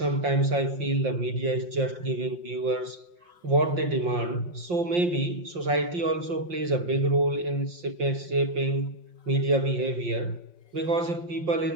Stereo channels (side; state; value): left; late; 5.7 ms